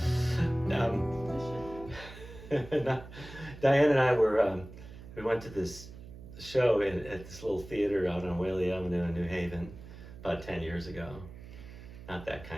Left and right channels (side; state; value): right; noise; hum, 15 dB below the sound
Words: Diane and I we went to this show at this little theater out on Whaley Avenue in New Haven about 10 years ago. Not that